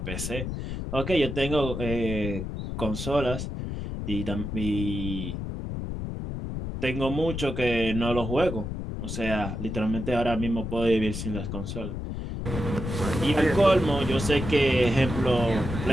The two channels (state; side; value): noise; left; rumble, 5 dB below the sound